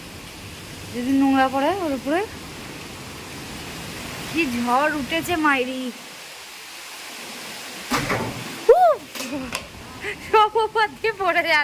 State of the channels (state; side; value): identical; both; correlation 1.00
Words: যদি নোংরা পড়ে ওর উপরে। কি ঝড় উঠেছে মাইরি, সব ওপর দিয়ে পড়ে